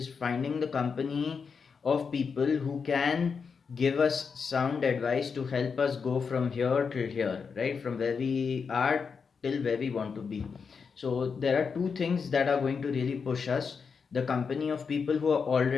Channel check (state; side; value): quieter; right; 5.7 dB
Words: finding the company of people who can give us sound advice to help us go from here till here, right? From where we are till where we want to be. So there are two things that are going to really push us: the company of people who are